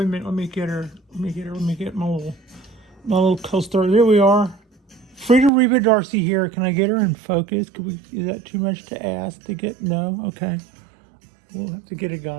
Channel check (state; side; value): drops out; left; at 5.5 s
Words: me get her. Let me get my little co-star. There we are. Frida Reba Dorsey here. Can I get her in focus? Is that too much to ask to get? No? Okay. We'll have to get a